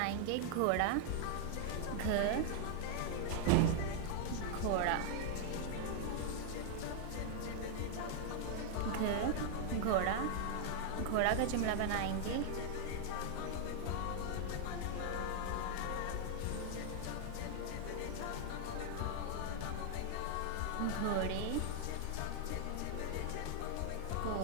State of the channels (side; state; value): both; different; correlation 0.00